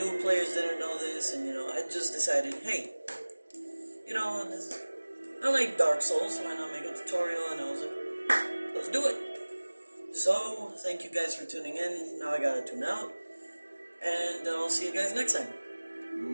players didn't know this, and I just decided, hey, I like Dark Souls. Why not make a tutorial? And I was like, let's do it. So thank you guys for tuning in. Now I gotta tune out, and I'll see you guys next time.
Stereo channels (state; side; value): inverted; both; correlation -1.00